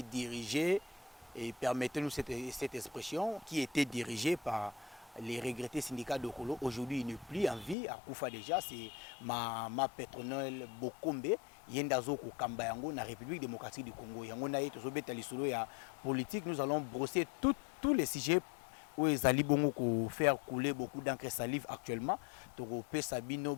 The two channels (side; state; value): right; drops out; at 7.8 s